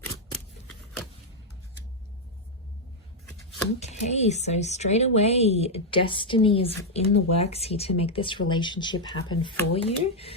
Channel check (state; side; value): normal; both; correlation -0.01